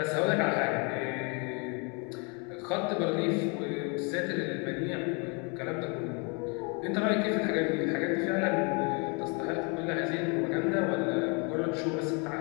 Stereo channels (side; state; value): right; quieter; 33.6 dB